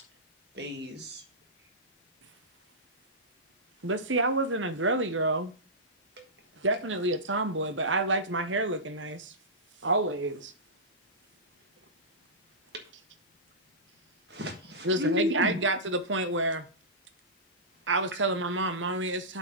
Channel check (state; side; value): normal; both; correlation -0.17